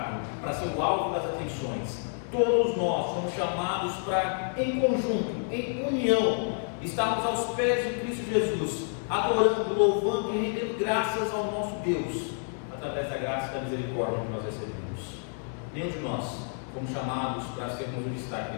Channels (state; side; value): silent; right; 58 dB below the other